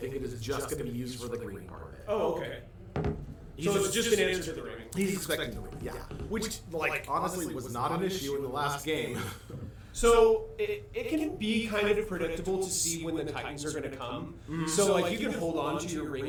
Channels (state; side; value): identical; both; correlation 1.00